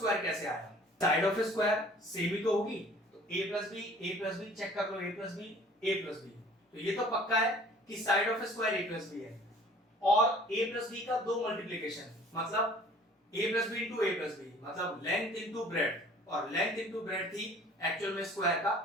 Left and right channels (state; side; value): normal; both; correlation 0.51